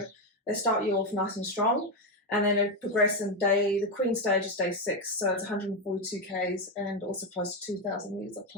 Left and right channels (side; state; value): both; normal; correlation 0.08